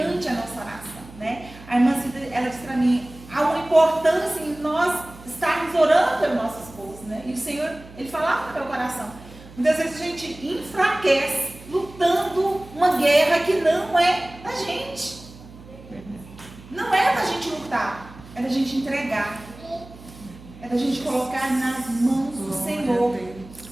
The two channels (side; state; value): right; noise; hum, 19 dB below the sound